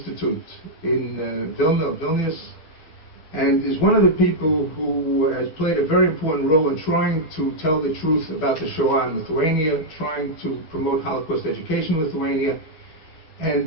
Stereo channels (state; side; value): late; right; 12 ms